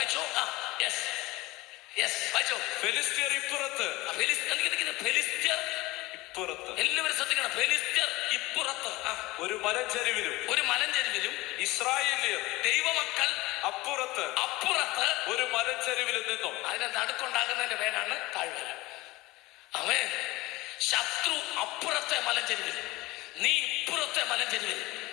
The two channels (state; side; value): quieter; right; 20.2 dB